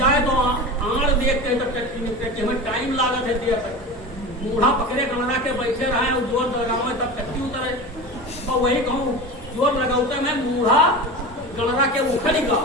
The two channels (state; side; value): normal; both; correlation 0.29